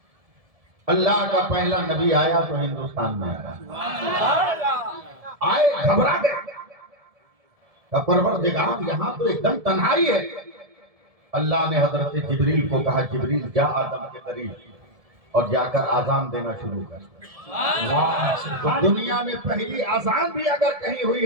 اللہ کا پہلا نبی آیا تو ہندوستان میں آیا آئے گھبرا گئے پروردگار یہاں تو ایک دم تنہائی ہے اللہ نے حضرت جبریل کو کہا جبریل جا آدم کے قریب اور جا کر آذان دینا شروع کر تو دنیا میں پہلی آذان بھی اگر کہیں ہوئی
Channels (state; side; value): late; left; 1.7 ms